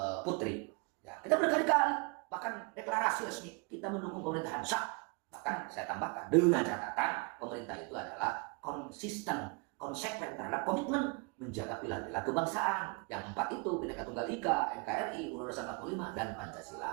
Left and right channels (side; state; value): left; quieter; 31.0 dB